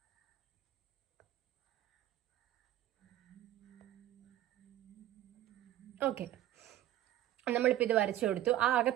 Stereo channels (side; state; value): left; quieter; 13.4 dB